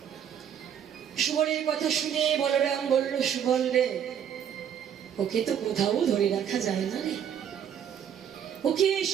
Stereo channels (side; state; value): left; quieter; 8.9 dB